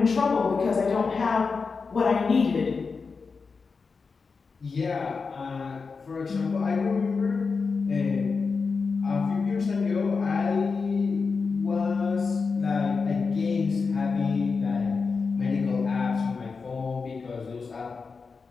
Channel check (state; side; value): quieter; right; 4.8 dB